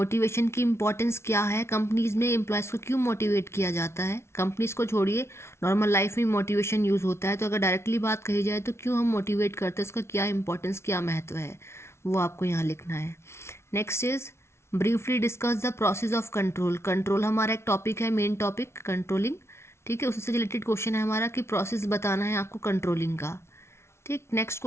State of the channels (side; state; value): right; late; 0.13 ms